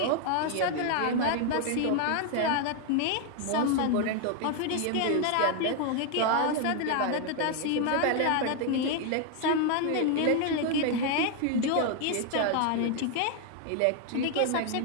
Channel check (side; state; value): both; different; correlation 0.01